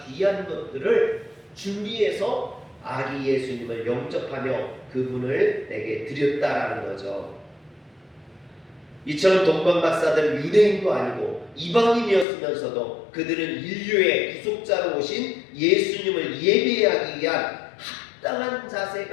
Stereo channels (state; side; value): drops out; right; at 12.2 s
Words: 귀한 것들을 준비해서 아기 예수님을 영접하며 그분을 내게 드렸다라는 거죠. 이처럼 동방 박사들은 유대인도 아니고 이방인이었으면서도 그들은 인류의 구속자로 오신 예수님을 예배하기 위한 합당한